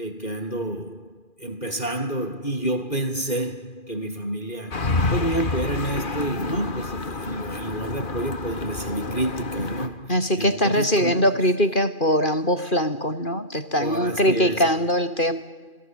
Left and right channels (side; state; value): right; late; 2.4 ms